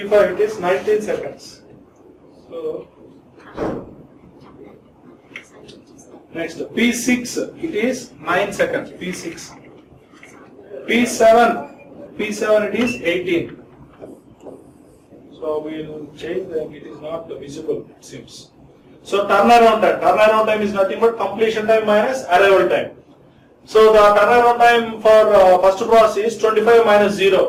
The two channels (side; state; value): both; identical; correlation 1.00